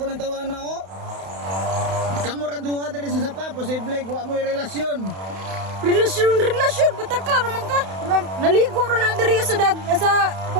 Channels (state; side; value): late; left; 31 ms